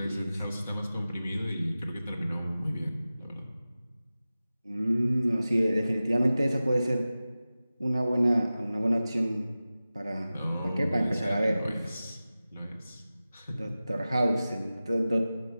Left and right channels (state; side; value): inverted; both; correlation -0.96